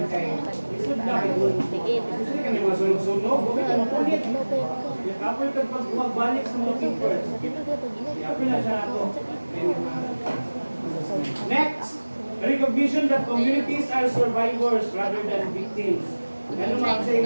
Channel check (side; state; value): both; inverted; correlation -1.00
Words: kay isod na kayo. Gusto ka niyo mga sunog-sunog, huwag ka mapulit. Apoy ka pag magbalik sa mga keepers. Apoy na siya ako. Next! Recognition that communities are survivors rather than victims. Ano mga sa